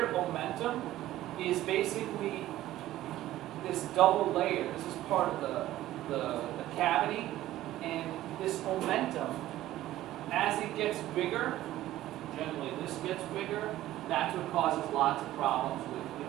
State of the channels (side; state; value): left; quieter; 14.6 dB